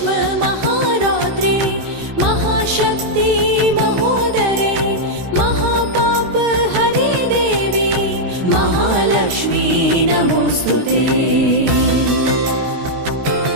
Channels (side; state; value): left; late; 16 ms